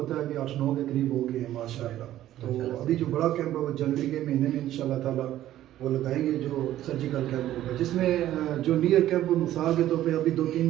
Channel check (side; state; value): left; quieter; 13.2 dB